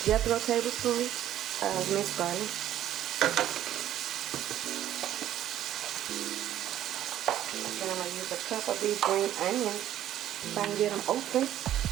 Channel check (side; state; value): left; quieter; 12.0 dB